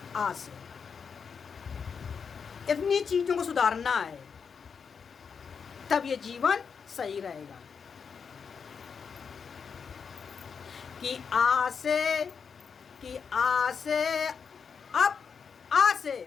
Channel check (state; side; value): quieter; right; 6.2 dB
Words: आज से इतनी चीजों को सुधारना है, तब ये जीवन सही रहेगा। कि आ से अब, आ से